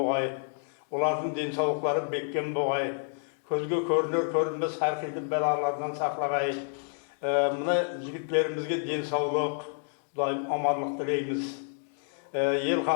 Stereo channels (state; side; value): silent; right; 58 dB below the other